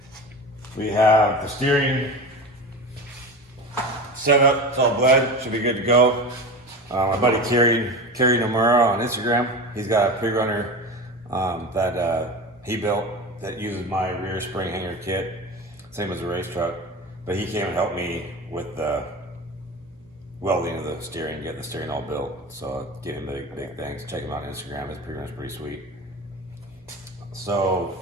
We have the steering set up, it's all bled, should be good to go. My buddy Kerry Nomura on Instagram, he's got a pre-runner that he built that uses my rear spring hanger kit, same as the race truck. But he came and helped me with the welding of the steering, getting the steering all built. So give him big thanks. Check him out on Instagram, his pre-runner's pretty sweet. So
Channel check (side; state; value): both; normal; correlation 0.28